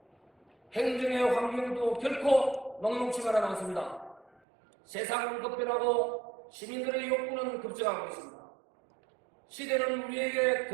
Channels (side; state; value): left; drops out; at 4.3 s